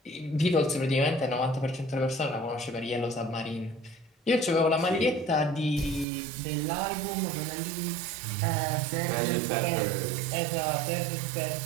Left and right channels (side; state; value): left; drops out; at 6.1 s